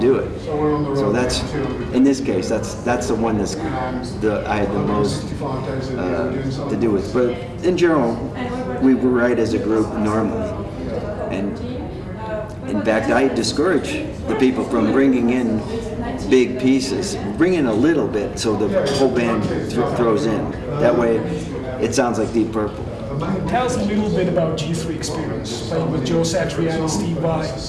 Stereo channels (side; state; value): both; identical; correlation 1.00